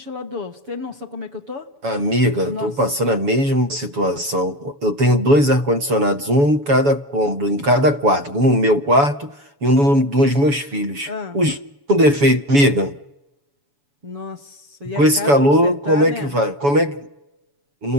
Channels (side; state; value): left; late; 7.0 ms